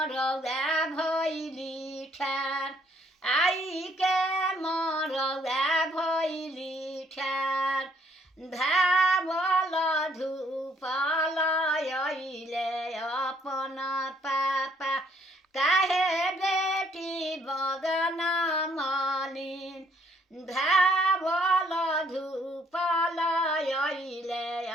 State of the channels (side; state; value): both; normal; correlation 0.66